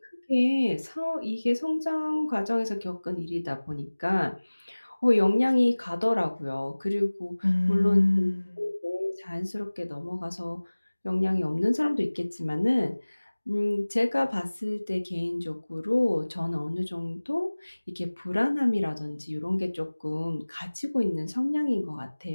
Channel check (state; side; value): inverted; both; correlation -1.00